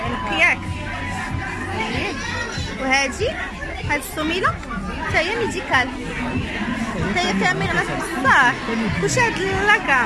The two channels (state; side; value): identical; both; correlation 1.00